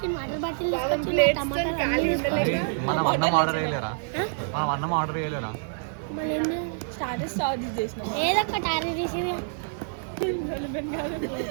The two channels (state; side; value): silent; left; digital silence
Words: వాటర్ బాటిల్ తీసుకొచ్చి మనం అన్నం ఆర్డర్ చేయలేరా? మళ్ళీ స్టార్టర్స్ చేసినాం. ఏదో ఒకటి ఆర్డర్ చేసి